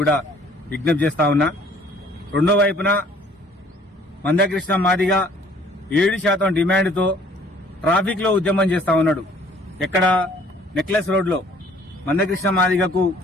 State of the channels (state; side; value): normal; both; correlation 0.56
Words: కూడా విజ్ఞప్తి చేస్తా ఉన్నా. రెండో వైపున మందకృష్ణ మాదిగ 7% డిమాండ్తో ట్రాఫిక్ లో ఉద్యమం చేస్తా ఉన్నాడు. ఎక్కడ? నెక్లెస్ రోడ్ లో. మందకృష్ణ మాదిగకు